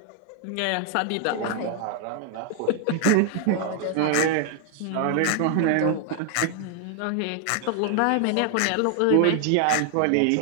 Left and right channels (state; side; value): different; both; correlation 0.00